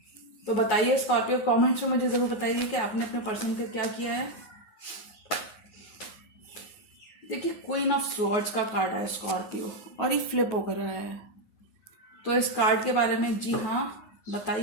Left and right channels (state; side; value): late; right; 9.2 ms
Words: तो बताइए स्कॉर्पियो, कमेंट्स में मुझे जरूर बताइए कि आपने अपने पर्सन का क्या किया है। देखिए क्वीन ऑफ स्वॉर्ड्स का कार्ड है स्कॉर्पियो और ये फ्लिप होकर रहा है। तो इस कार्ड के बारे में जी हाँ